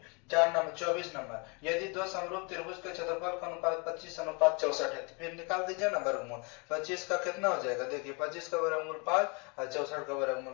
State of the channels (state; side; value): quieter; right; 31.9 dB